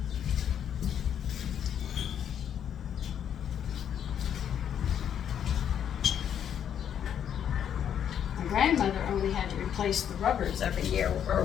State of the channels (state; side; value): quieter; right; 9.0 dB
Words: My grandmother only had to replace the rubbers every year or